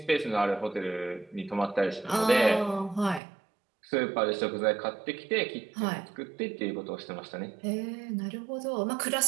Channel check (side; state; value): left; drops out; at 3.2 s